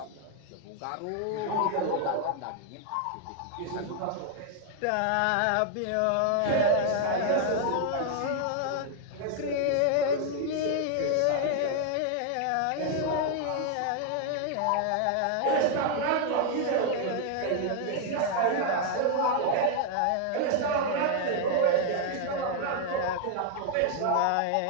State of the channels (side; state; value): both; different; correlation 0.00